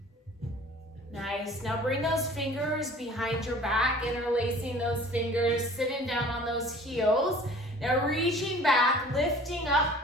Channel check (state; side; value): normal; both; correlation 0.47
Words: Nice. Now bring those fingers behind your back, interlacing those fingers, sitting down on those heels. Now reaching back, lifting up